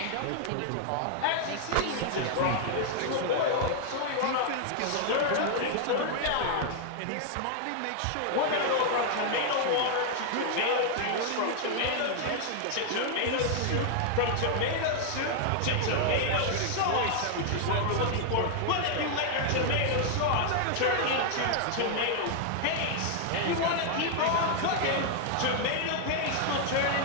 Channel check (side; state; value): both; different; correlation 0.00